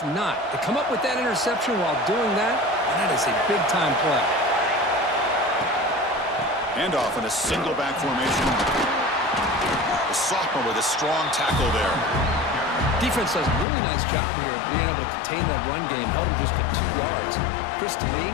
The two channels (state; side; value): drops out; right; at 13.7 s